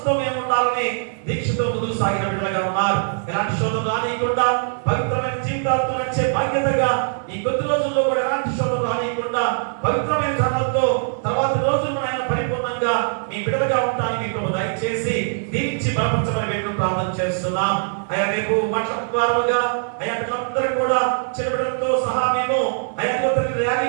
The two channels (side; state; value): left; silent; 64 dB below the other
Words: మేము ఉండాలని దీక్షతో ముందుకు సాగిన బిడ్డలుగా ఉన్నారు. ఎలాంటి శోధన రానియకుండా పవిత్రమైన జీవితాలతో నడిచే బాధ్యతగా ఈ కొద్ది రోజుల్లో కూడా ఎలాంటి శోధన రానియకుండా పవిత్రమైన ధర్మంతో తర్వాత రోజులు ఆయన పరిపూర్ణంగా మీ బిడ్డలుగా ఉండడానికి మీకు దయచేసి దీవించి బలపరచమని మేము ప్రార్థన చేస్తున్నాం. అయ్యా రేపు మాట్లాడుకోవాలుగా అయ్యా బిడ్డలందరూ కూడా చిన్నపిల్లలతో సహా మేము అయ్యా